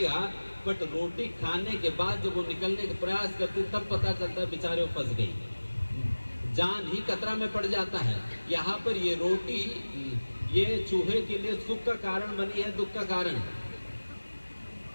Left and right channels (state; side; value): inverted; both; correlation -1.00